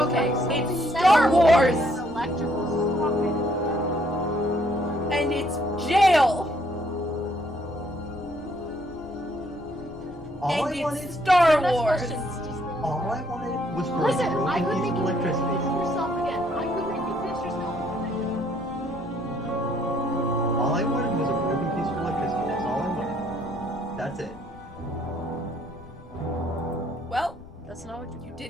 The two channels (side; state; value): left; noise; rumble, 22 dB below the sound